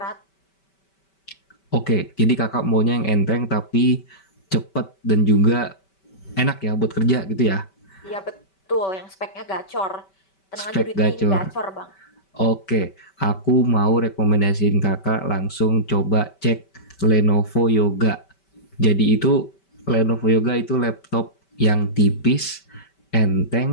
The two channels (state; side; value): late; right; 5.2 ms